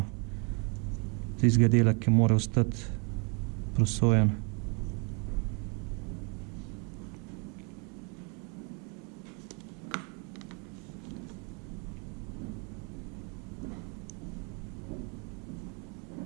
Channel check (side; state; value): left; quieter; 33.9 dB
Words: tistega dela, ki mora ostati prosojen.